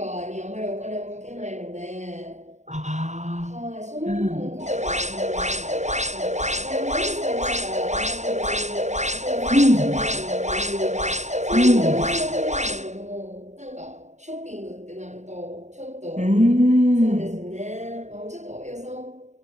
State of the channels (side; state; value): left; late; 0.34 ms